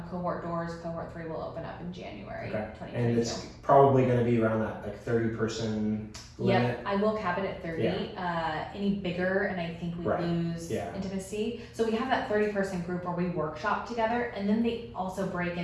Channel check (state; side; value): identical; both; correlation 1.00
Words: cohort doors, Cohort 3 will open up in January 2022. And it's probably going to be around that 30-person limit? Yep, I will cap it at 30. Any bigger, and I think we lose intimacy. So we have that 30-person group where we workshop together, and then they also break